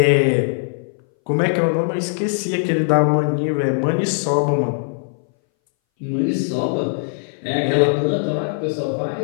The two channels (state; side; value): silent; right; 62 dB below the other